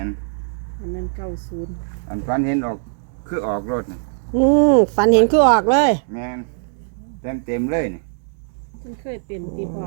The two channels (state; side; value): silent; left; digital silence